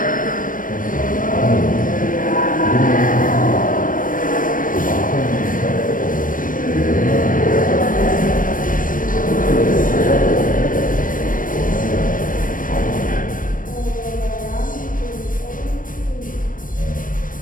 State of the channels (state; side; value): late; right; 0.40 ms